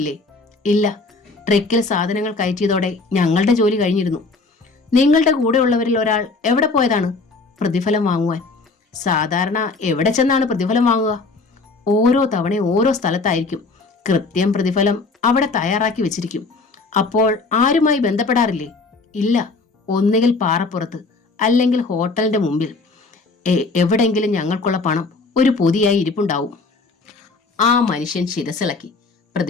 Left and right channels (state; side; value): quieter; right; 3.8 dB